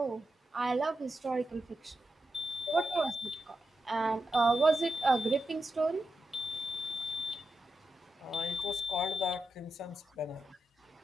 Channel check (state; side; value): normal; both; correlation 0.87